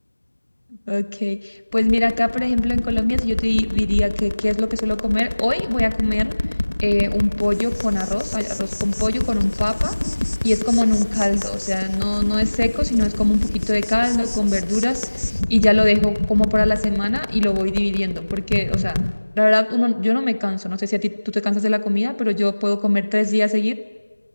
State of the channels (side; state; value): both; inverted; correlation -1.00